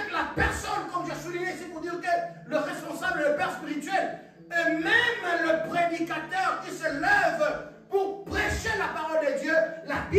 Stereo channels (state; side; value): identical; both; correlation 1.00